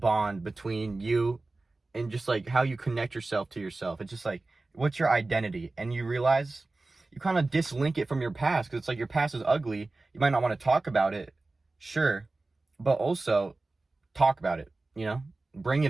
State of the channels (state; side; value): quieter; left; 3.2 dB